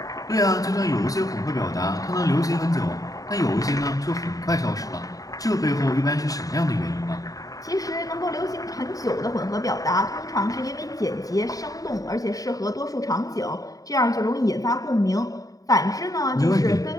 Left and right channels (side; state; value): right; late; 0.17 ms